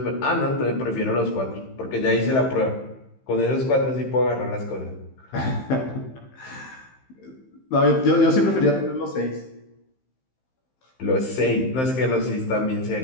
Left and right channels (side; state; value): right; late; 15 ms